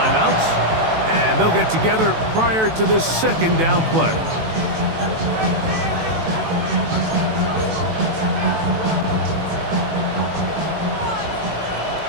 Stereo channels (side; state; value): left; late; 18 ms